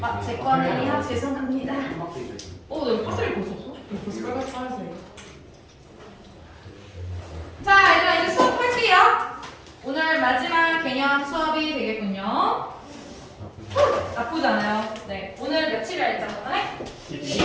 제 거는요. 죄송합니다. 나 이거 파스리 벌써 없어? 이거 벌써 빨간색. 자, 얘들아 이제 수업할게요. 오늘 마지막 개념 수업이 되겠군요. 나쁘지 않아요. 네, 오늘 며칠이라 했잖아요.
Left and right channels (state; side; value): identical; both; correlation 1.00